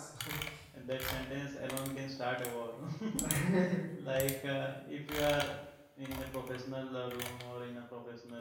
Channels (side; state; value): both; identical; correlation 1.00